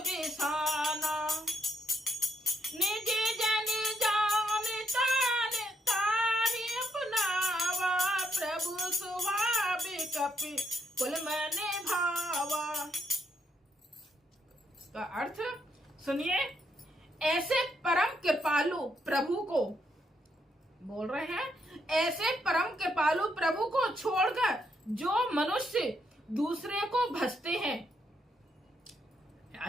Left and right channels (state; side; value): normal; both; correlation 0.76